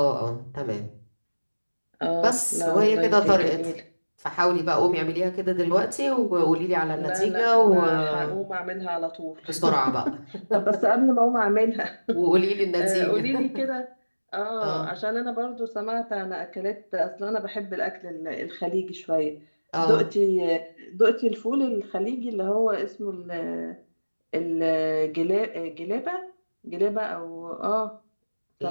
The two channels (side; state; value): both; inverted; correlation -1.00